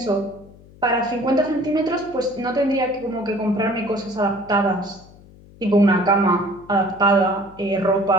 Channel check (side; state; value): left; noise; hum, 23 dB below the sound